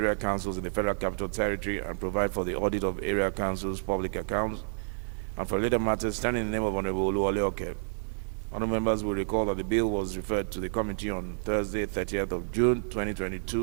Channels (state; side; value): silent; left; 58 dB below the other